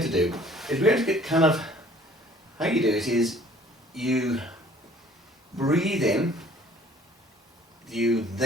to do is we're going to get kind of, how you do it is you breathe in, you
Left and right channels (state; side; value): normal; both; correlation 0.55